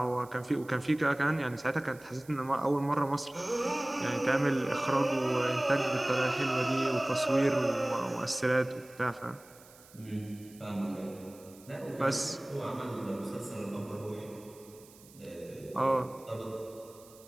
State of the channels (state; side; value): noise; right; hiss, 24 dB below the sound